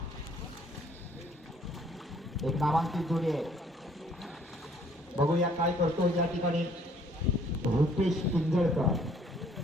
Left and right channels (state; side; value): normal; both; correlation 0.61